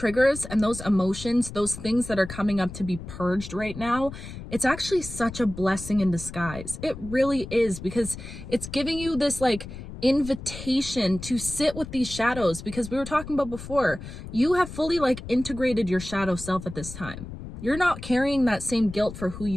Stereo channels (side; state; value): left; noise; rumble, 11 dB below the sound